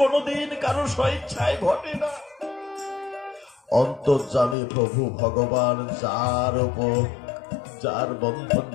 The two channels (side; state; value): right; drops out; at 4.5 s